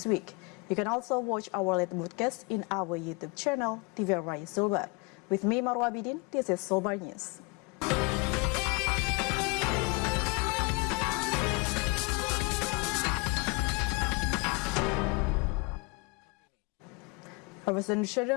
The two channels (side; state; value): right; quieter; 28.2 dB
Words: week. You can also watch our latest broadcast in our YouTube channel, TVRI Sulbar. With me, Marwa Bidin, this is Sulbar News. A